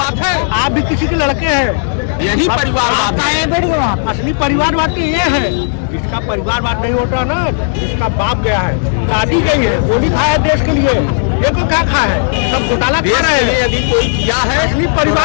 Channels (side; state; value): right; silent; digital silence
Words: है। आप भी किसी के लड़के हैं, यही परिवारवाद है। असली परिवारवाद तो ये है, जिसका परिवारवाद नहीं होता ना, जिसका बाप गया है, दादी गई है, गोली खाया है देश के लिए, ये को क्या खाया है, सब घोटाला खा रहे हैं। यदि कोई किया है असली